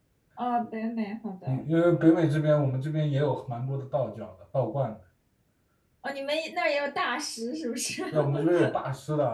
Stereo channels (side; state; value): both; identical; correlation 1.00